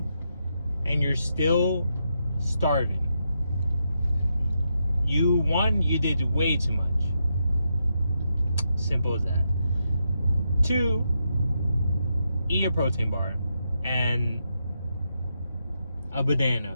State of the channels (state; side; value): inverted; both; correlation -0.83